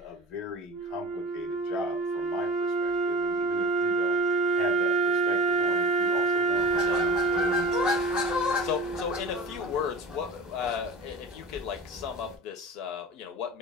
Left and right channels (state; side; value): normal; both; correlation 0.34